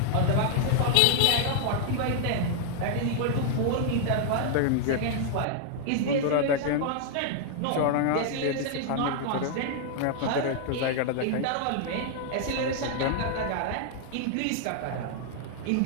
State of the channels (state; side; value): different; both; correlation 0.00